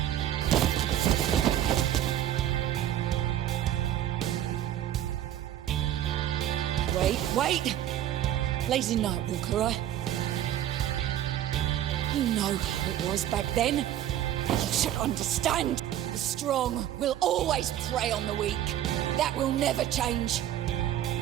Wait! Lazy Nightwalker, right? You know how it was back then. You should understand. The strong will always prey on the weak. That will never change.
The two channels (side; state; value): left; quieter; 12.0 dB